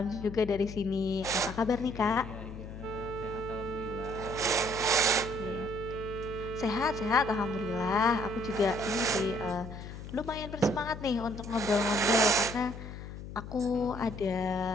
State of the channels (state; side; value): noise; left; hum, 11 dB below the sound